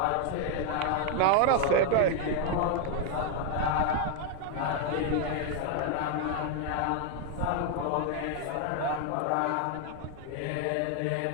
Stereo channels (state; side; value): different; both; correlation 0.00